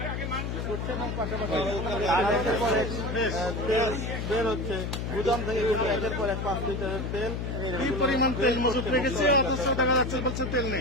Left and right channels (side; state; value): left; noise; hum, 3 dB below the sound